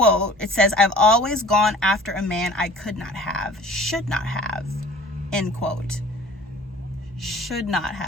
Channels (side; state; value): both; normal; correlation 0.46